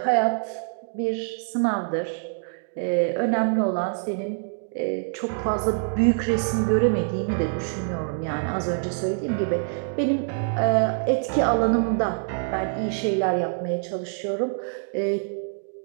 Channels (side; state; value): left; silent; digital silence